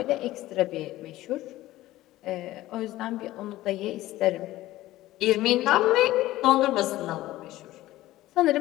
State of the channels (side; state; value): right; quieter; 16.1 dB